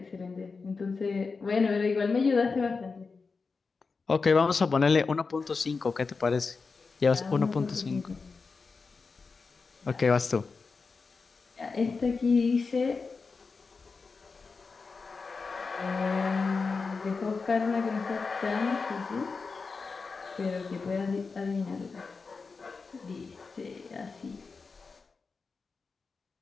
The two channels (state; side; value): quieter; right; 4.6 dB